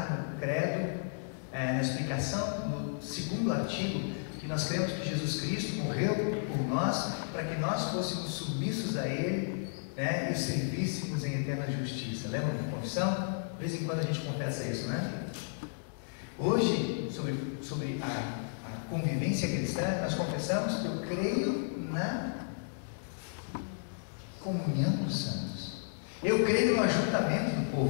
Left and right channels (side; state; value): right; silent; digital silence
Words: no credo, na explicação, no segundo artigo, que nós cremos que Jesus Cristo morreu por nós, para que nós fôssemos submissos a Ele, né, e servíssemos em eterna justiça. Lembra da confissão? De vez em quando a gente confessa isso, né? Hoje, sobre a convivência cristã, nós confessamos que eu creio na comunhão dos santos. Eu creio no ajuntamento do